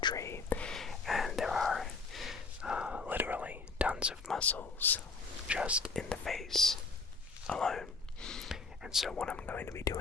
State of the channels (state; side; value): quieter; right; 4.3 dB